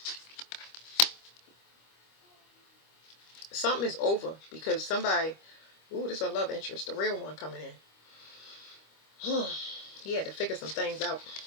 Something is over because somebody, ooh, this is a love interest, the real one coming in. He had to figure some things out.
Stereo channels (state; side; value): late; right; 25 ms